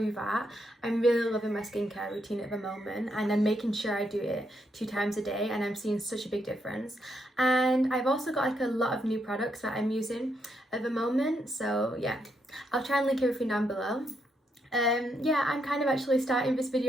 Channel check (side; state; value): both; normal; correlation 0.78